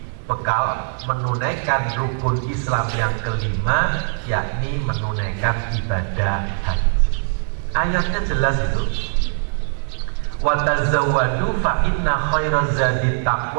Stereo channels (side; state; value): left; silent; 65 dB below the other